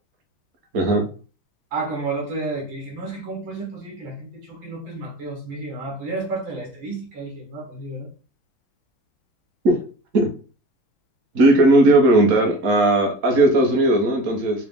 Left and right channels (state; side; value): normal; both; correlation 0.39